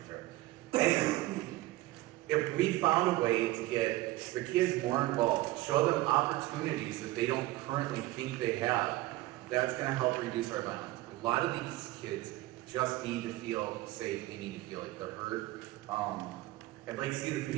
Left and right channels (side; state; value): left; quieter; 18.0 dB